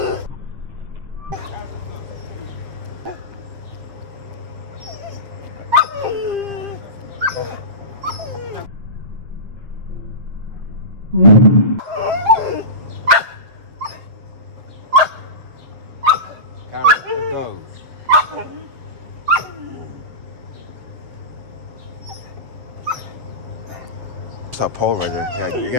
Go. It's that pole right there. You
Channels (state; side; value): late; left; 7.5 ms